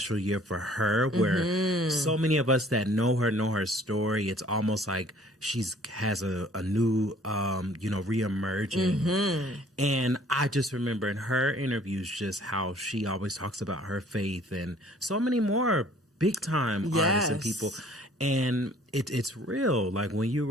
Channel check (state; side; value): normal; both; correlation 0.56